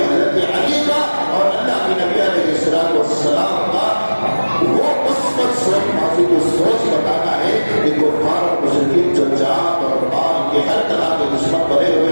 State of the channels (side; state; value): both; inverted; correlation -1.00